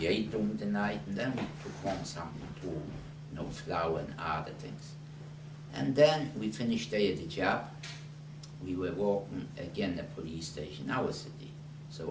ate during the night, and then we took home something too, you know, flour and other things. And then we finished there at the job. We were walking again the police station, our city.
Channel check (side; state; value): both; identical; correlation 1.00